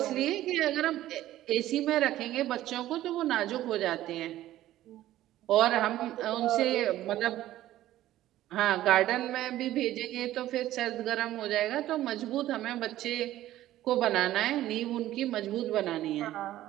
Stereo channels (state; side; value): quieter; left; 14.2 dB